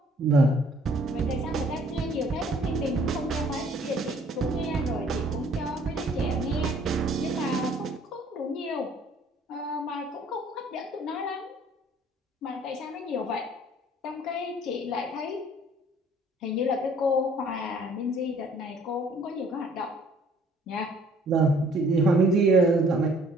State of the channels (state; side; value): normal; both; correlation 0.58